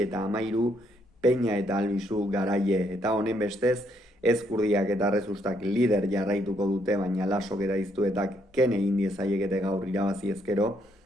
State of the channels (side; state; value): both; normal; correlation 0.72